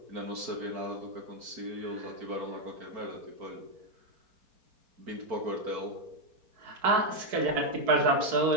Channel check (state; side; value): late; left; 4.6 ms